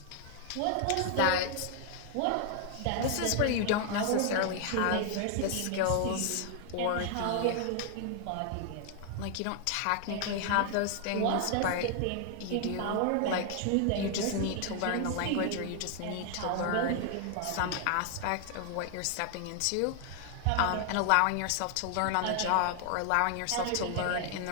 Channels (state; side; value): different; both; correlation 0.00